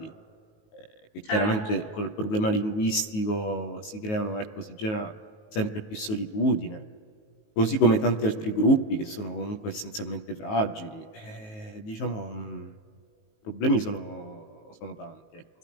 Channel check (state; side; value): late; right; 19 ms